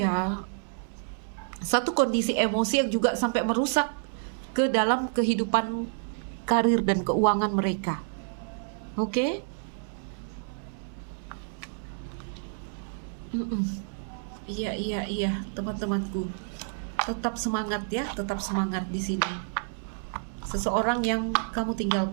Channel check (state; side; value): silent; left; 59 dB below the other